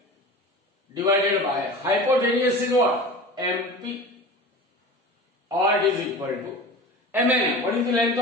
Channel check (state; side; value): normal; both; correlation 0.35